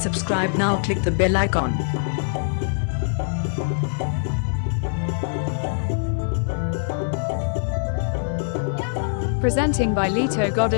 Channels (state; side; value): silent; right; digital silence